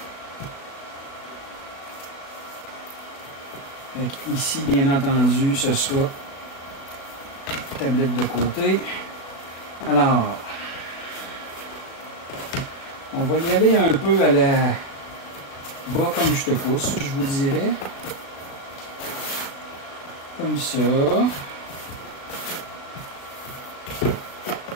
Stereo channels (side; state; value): right; late; 37 ms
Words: Ici, bien entendu, ce sera tablette de côté. Alors, on va y aller un peu à la bas comme je te pousse, je vous dirais. Comme ça.